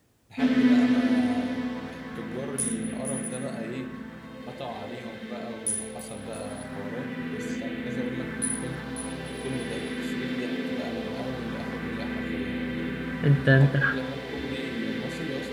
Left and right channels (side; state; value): both; identical; correlation 1.00